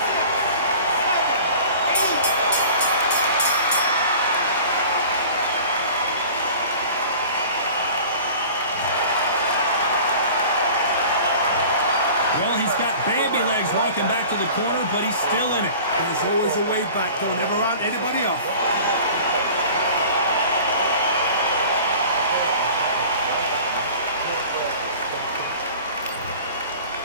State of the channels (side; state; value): both; inverted; correlation -0.43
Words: Well, he's got Bambi legs walking back to the corner, but he's still in it. There's always a way back. Don't ever round anybody off.